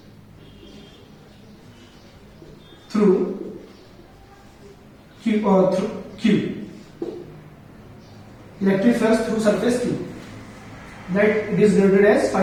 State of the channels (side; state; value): both; identical; correlation 1.00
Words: through Q. Electric flux through surface Q, that it is denoted as